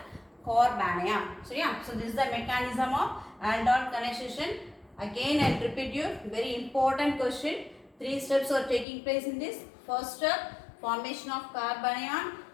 carbon ion. So yeah, so this is the mechanism of aldol condensation. Again I will repeat you, very important question. 3 steps are taking place in this. First step, formation of carbon ion.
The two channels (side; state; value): right; drops out; at 8.8 s